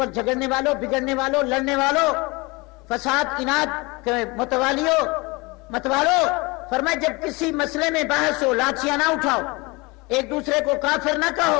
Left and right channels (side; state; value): right; quieter; 25.5 dB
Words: جھگڑنے والوں، بگڑنے والوں، لڑنے والوں، فساد اناد کے متوالو، فرمائے جب کسی مسئلے میں بحث ہو لاٹھیاں نہ اٹھاؤ، ایک دوسرے کو کافر نہ کہو،